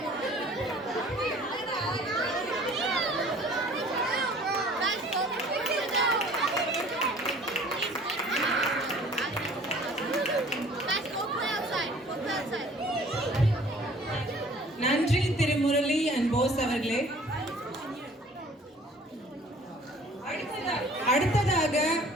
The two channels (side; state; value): both; normal; correlation 0.51